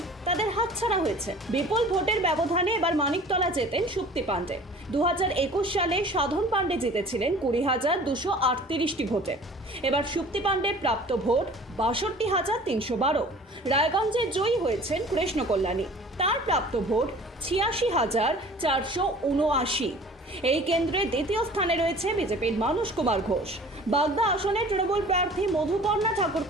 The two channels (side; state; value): both; normal; correlation 0.46